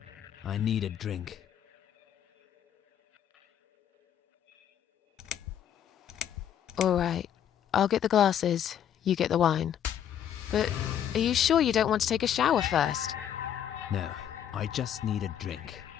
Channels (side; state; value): right; quieter; 9.7 dB